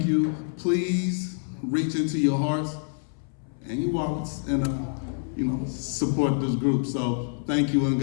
you. Please reach into your hearts and your wallets and support this group. So thank you and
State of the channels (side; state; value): right; silent; 60 dB below the other